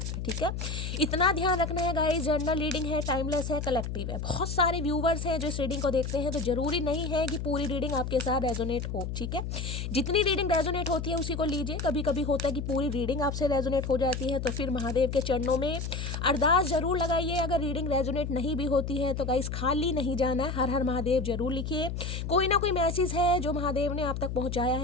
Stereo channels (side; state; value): left; noise; hum, 4 dB below the sound